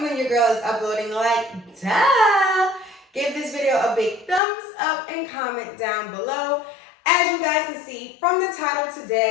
when your girl is uploading, like, duh. Give this video a big thumbs up and comment down below. As you guys can see from the title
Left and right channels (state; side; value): drops out; right; at 4.4 s